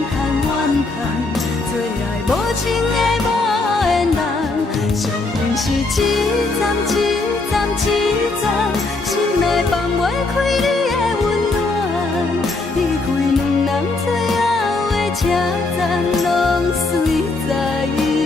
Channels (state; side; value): quieter; right; 3.4 dB